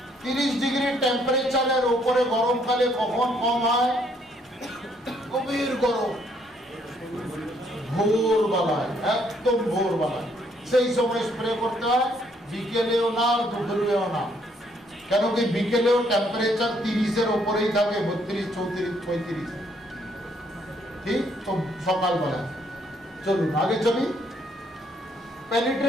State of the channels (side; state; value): both; normal; correlation 0.69